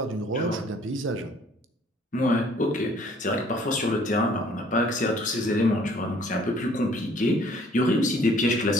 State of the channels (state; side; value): normal; both; correlation 0.58